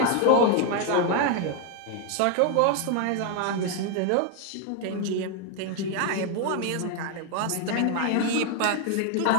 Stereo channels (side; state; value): both; different; correlation 0.01